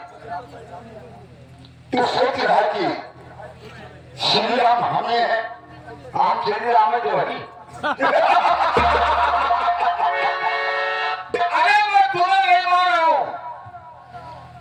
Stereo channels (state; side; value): identical; both; correlation 1.00